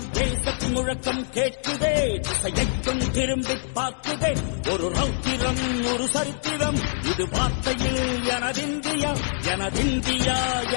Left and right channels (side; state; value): right; silent; digital silence